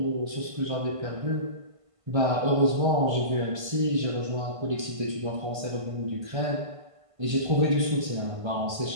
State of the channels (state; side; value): late; left; 1.5 ms